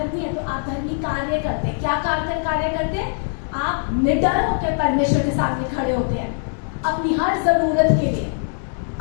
हैं, तो आप धर्मी कार्य करते हैं। क्या कार्य करते हैं? आप निडर होकर परमेश्वर के सामने खड़े होते हैं, अपनी हर जरूरत के लिए,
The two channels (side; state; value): right; silent; 59 dB below the other